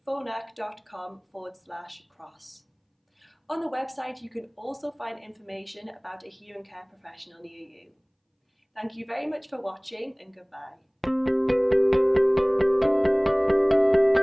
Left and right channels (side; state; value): both; identical; correlation 1.00